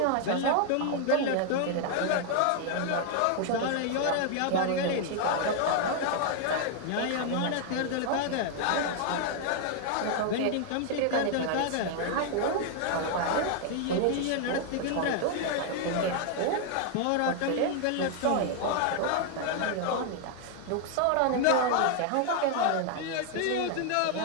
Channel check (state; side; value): different; both; correlation 0.00